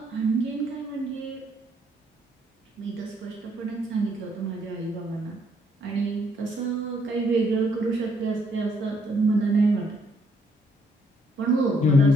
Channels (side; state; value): both; normal; correlation 0.70